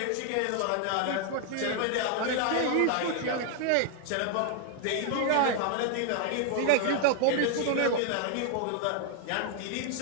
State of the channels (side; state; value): both; different; correlation 0.00